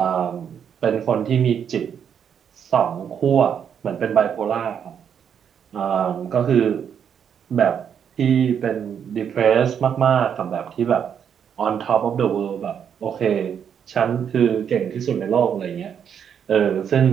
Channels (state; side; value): quieter; left; 8.1 dB